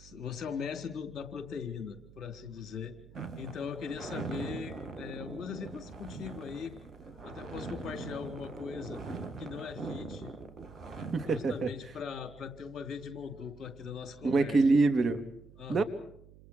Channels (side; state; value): right; noise; hum, 20 dB below the sound